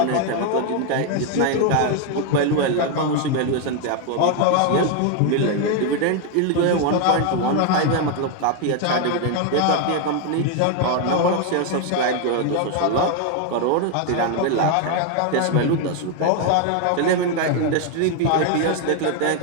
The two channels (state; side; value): different; both; correlation 0.01